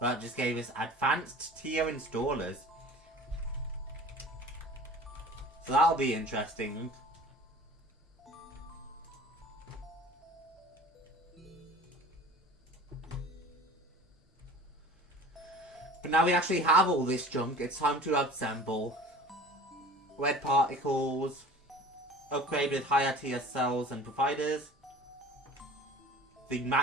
That just gave us advanced tier installers. So that'll be interesting. But now we actually have all this junk, it's time to assemble. Red particles. Upgrade with higher tier cells and providers. The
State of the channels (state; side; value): normal; both; correlation 0.42